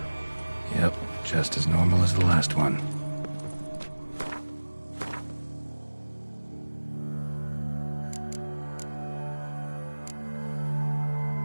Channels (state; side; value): inverted; both; correlation -1.00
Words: Yep, just as normal as the last one.